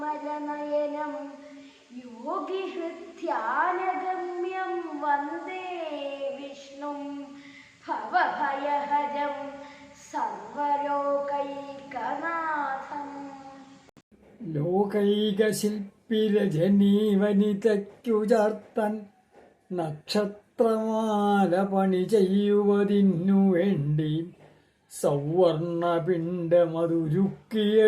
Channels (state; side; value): identical; both; correlation 1.00